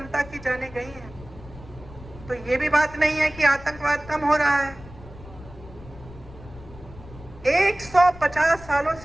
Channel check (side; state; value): left; noise; rumble, 18 dB below the sound